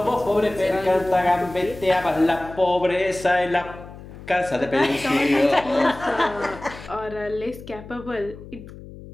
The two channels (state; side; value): noise; left; hum, 16 dB below the sound